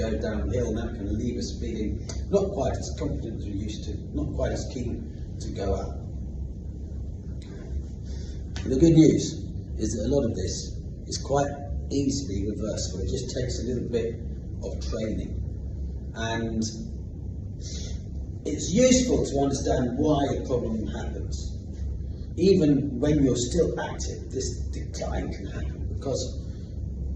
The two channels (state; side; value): identical; both; correlation 1.00